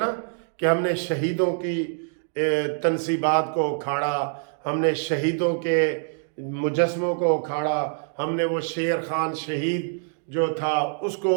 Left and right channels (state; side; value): silent; left; 61 dB below the other